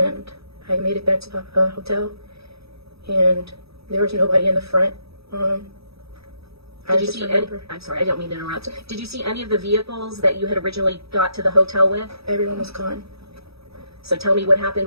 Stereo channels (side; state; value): left; late; 0.77 ms